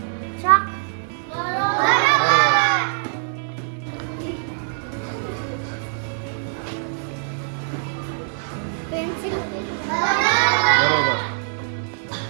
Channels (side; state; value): left; silent; 62 dB below the other